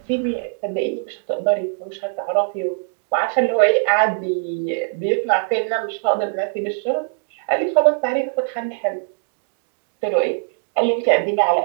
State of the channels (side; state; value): left; silent; digital silence